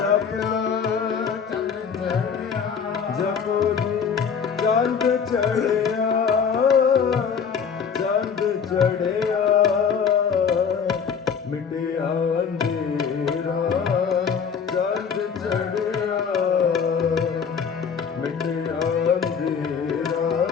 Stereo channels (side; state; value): right; quieter; 6.5 dB